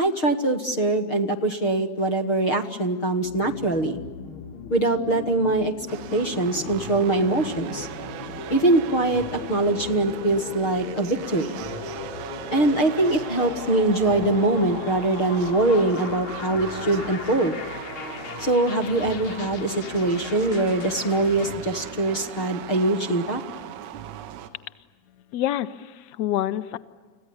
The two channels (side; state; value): right; late; 6.5 ms